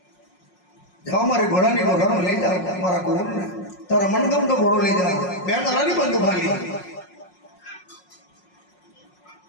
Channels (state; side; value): late; right; 5.5 ms